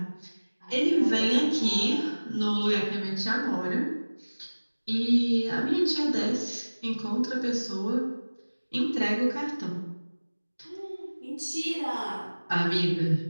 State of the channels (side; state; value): both; inverted; correlation -1.00